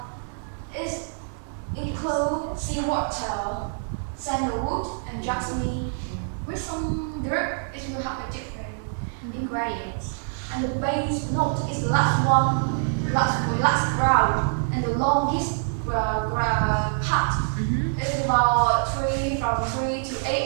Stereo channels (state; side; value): silent; left; digital silence